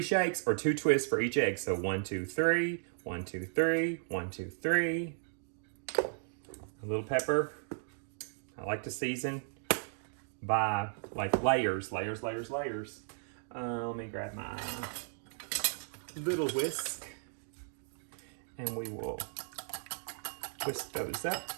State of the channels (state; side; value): silent; left; digital silence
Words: shakes or 2 twists for each egg. So 1, 2, 3, 1, 2, 3, 1, 2, 3. A little pepper. I like to season by like layers. Let me grab my little whisk and we will whisk those up.